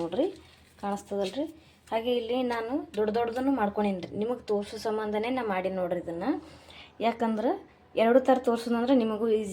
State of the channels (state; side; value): identical; both; correlation 1.00